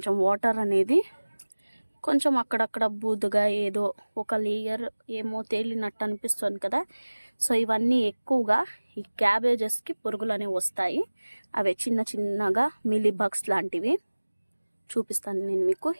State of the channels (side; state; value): both; inverted; correlation -1.00